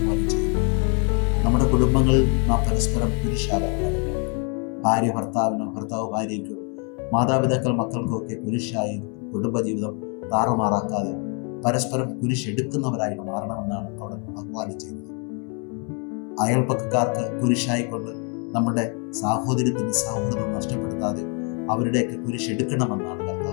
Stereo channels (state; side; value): quieter; right; 37.1 dB